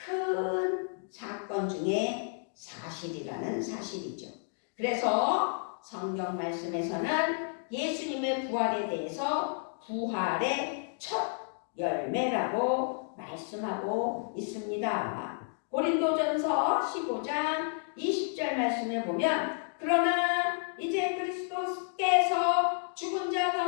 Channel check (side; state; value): right; silent; 57 dB below the other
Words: 사건 중에 사실이라는 사실이죠. 그래서 성경 말씀에서는 예수님의 부활에 대해서 부활의 첫 열매라고 말씀하고 있습니다. 고린도전서 15장 20절 말씀에 보면, 그러나 이제 그리스도께서 죽은 자